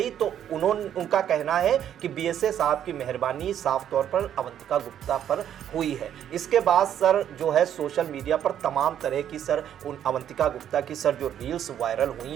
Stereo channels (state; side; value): quieter; left; 10.0 dB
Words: तो उनका कहना है कि बीएसए साहब की मेहरबानी साफ तौर पर अवंतिका गुप्ता पर हुई है। इसके बाद सर जो है सोशल मीडिया पर तमाम तरह की सर उन अवंतिका गुप्ता की सर जो रील्स वायरल